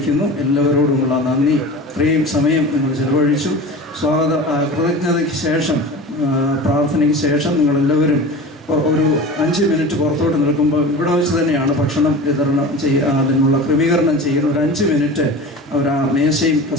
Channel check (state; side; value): normal; both; correlation 0.34